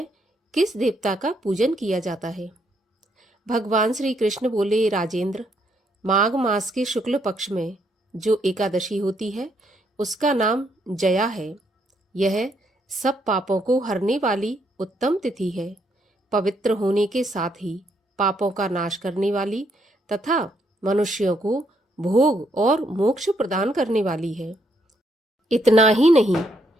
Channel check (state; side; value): normal; both; correlation 0.73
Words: किस देवता का पूजन किया जाता है। भगवान श्री कृष्ण बोले, राजेंद्र, माघ मास के शुक्ल पक्ष में जो एकादशी होती है उसका नाम जया है। यह सब पापों को हरने वाली उत्तम तिथि है, पवित्र होने के साथ ही पापों का नाश करने वाली तथा मनुष्यों को भोग और मोक्ष प्रदान करने वाली है। इतना ही नहीं,